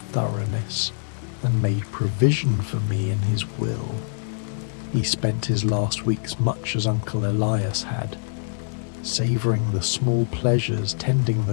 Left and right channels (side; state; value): right; silent; digital silence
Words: thoroughness, and made provision for me in his will. He spent his last weeks much as Uncle Elias had, savouring the small pleasures, tending